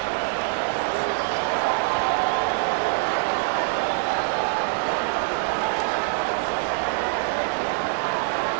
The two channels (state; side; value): silent; left; 58 dB below the other